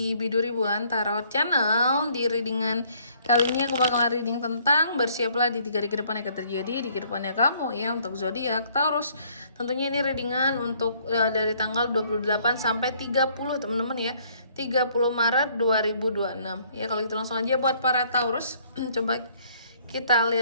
Biduri Bulan Tarot Channel. Di readingan kali ini aku bakalan reading tentang bersiaplah di 3 hari ke depan akan terjadi di kehidupannya kamu ya untuk zodiak Taurus. Tentunya ini readingan untuk dari tanggal 28 sampai 30 teman-teman ya. 30 Maret 2026. Ya kalau gitu langsung aja buat para Taurus. Coba kita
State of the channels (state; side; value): inverted; both; correlation -0.63